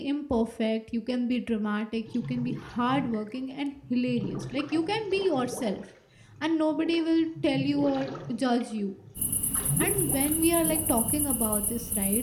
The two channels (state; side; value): identical; both; correlation 1.00